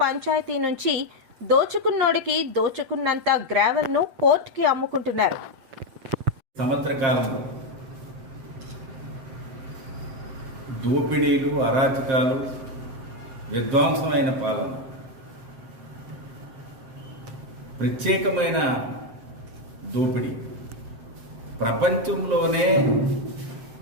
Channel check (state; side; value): late; left; 7.6 ms